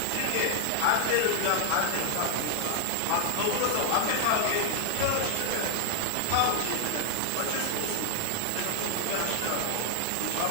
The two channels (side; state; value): both; different; correlation 0.00